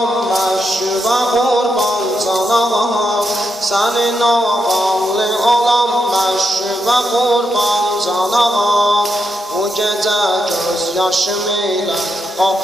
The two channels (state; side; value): normal; both; correlation 0.82